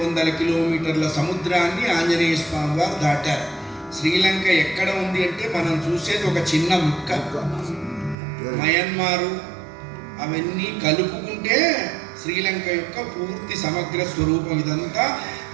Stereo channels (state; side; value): drops out; left; at 8.2 s